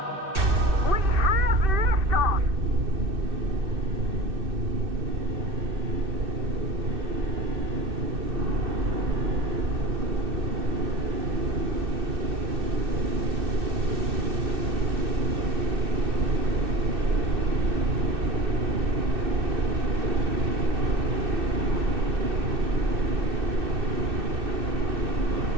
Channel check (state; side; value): late; left; 2.6 ms